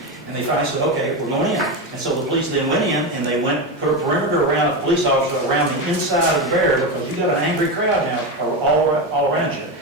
And they finally said, okay, we're going in. And so the police then went in, and they put a perimeter around a police officer around the inside of the barrier, because you've got an angry crowd now all around you.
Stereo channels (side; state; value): both; normal; correlation 0.15